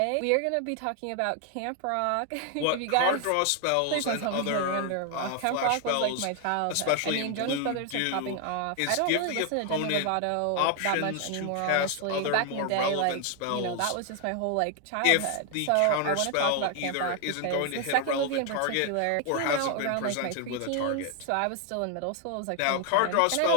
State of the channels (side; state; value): both; different; correlation 0.00